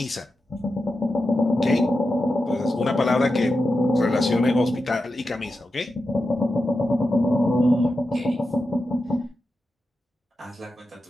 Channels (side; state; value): both; normal; correlation 0.90